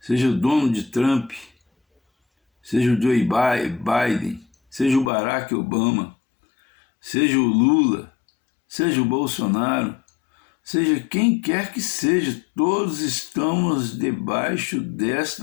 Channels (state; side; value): drops out; right; at 5.1 s